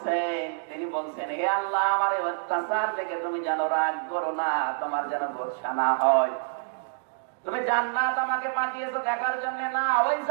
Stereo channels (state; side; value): silent; left; digital silence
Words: তিনি বলছেন, হে আল্লাহ আমার এই অত্যাচার থেকে তুমি যেন রাগ করো না, তোমার যেন গোসা না হয়। তুমি জান্নাত আমাকে পাঠিয়েছো দেখার জন্য না, ওই